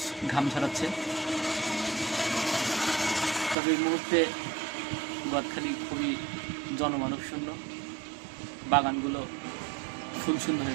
ঘাম ঝরাচ্ছে। তবে এই মুহূর্তে গদখালি খুবই জনমানব শূন্য, বাগানগুলো ফুলশূন্য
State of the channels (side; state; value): left; drops out; at 3.6 s